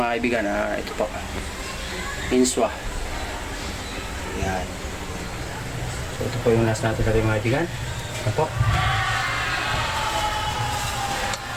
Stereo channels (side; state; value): both; identical; correlation 1.00